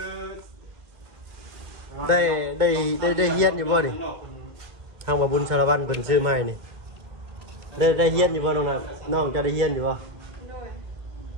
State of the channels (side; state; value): left; late; 2.1 ms